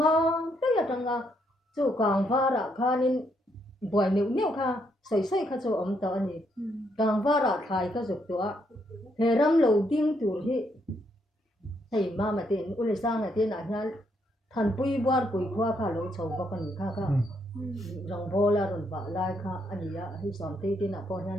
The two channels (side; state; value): both; normal; correlation 0.75